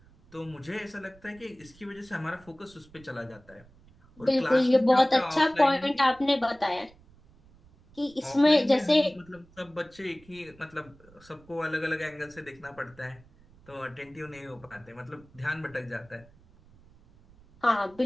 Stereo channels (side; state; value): right; noise; rumble, 26 dB below the sound